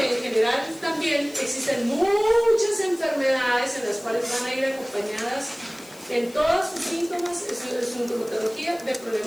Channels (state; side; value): noise; left; hiss, 22 dB below the sound